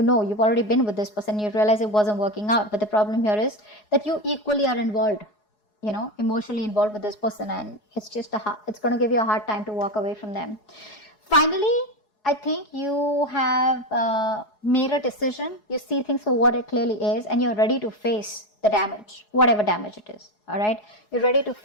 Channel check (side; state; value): right; late; 4.8 ms